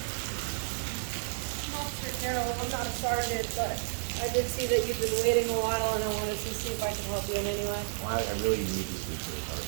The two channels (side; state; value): left; silent; digital silence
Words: Officer Carroll, I'm not a sergeant, but I did see that you've been waiting a while, and I wanted to see if I can help you in any way. Well, I really need to speak to the